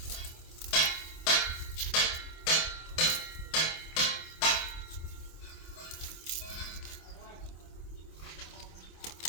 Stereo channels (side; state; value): right; late; 26 ms